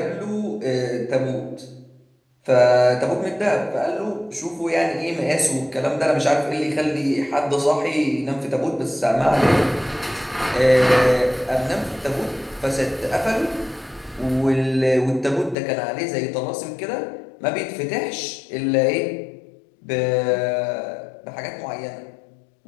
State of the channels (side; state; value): right; drops out; at 15.6 s